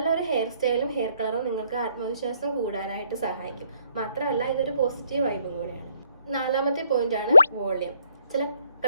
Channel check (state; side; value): inverted; both; correlation -0.69